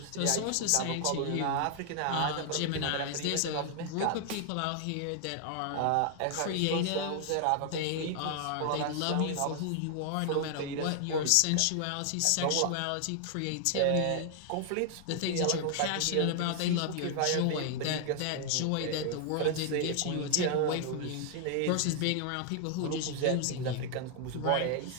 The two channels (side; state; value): both; different; correlation 0.00